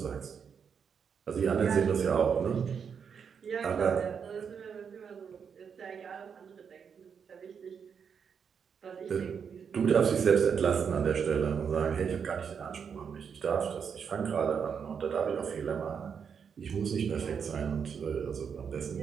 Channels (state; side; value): quieter; left; 6.8 dB